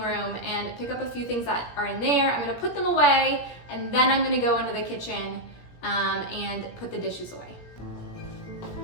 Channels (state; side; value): late; right; 17 ms